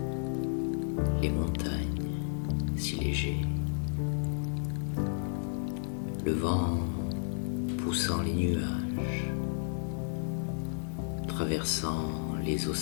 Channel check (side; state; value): right; silent; digital silence